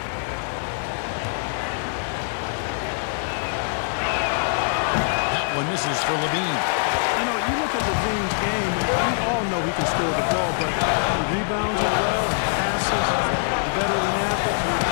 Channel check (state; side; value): silent; right; digital silence